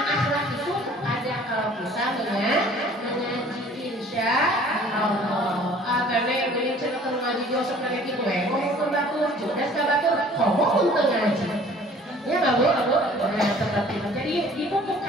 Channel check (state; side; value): normal; both; correlation 0.52